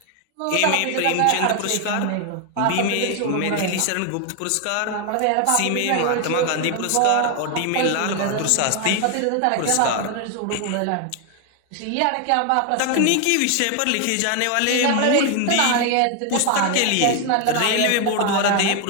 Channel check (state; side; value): different; both; correlation 0.01